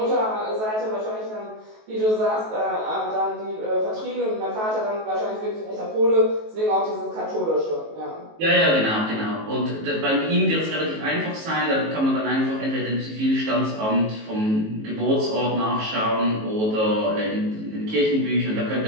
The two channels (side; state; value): left; late; 19 ms